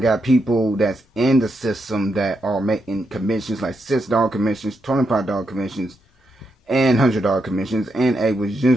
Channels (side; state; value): both; normal; correlation 0.82